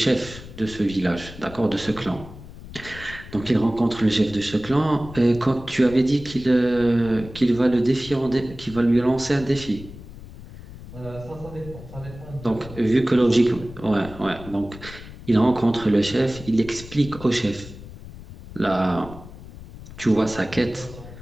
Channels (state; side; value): noise; left; rumble, 15 dB below the sound